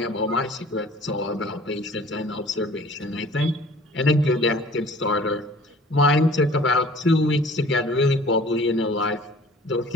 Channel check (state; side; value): normal; both; correlation 0.49